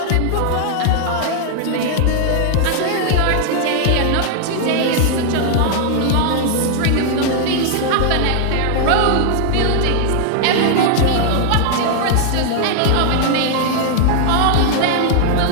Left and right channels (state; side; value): different; both; correlation 0.00